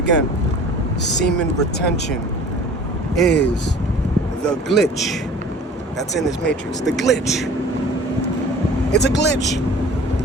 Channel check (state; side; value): normal; both; correlation 0.45